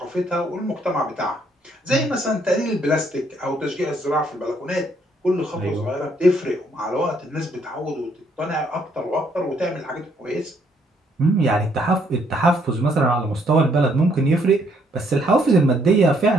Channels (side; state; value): both; normal; correlation 0.68